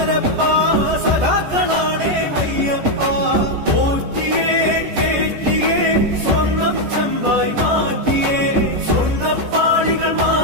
സഖാക്കളാണേ അയ്യപ്പ പോറ്റിയേ കേറ്റിയേ സ്വർണം ചെമ്പായി മാറ്റിയേ സ്വർണ്ണപ്പാളികൾ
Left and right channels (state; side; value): late; left; 14 ms